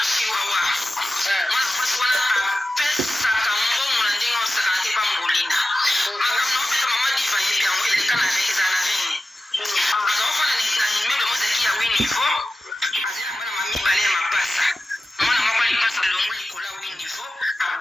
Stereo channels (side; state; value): both; normal; correlation 0.94